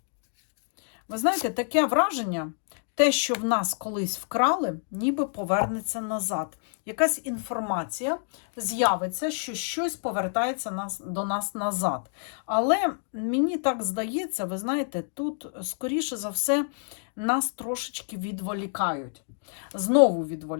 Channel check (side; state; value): right; silent; digital silence